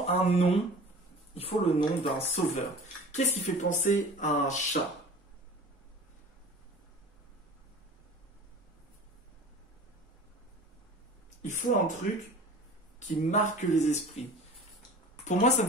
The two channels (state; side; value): normal; both; correlation 0.41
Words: un nom. Il faut le nom d'un sauveur. Qu'est-ce qui fait penser à un chat? Il faut un truc qui marque les esprits. Pour moi, ça me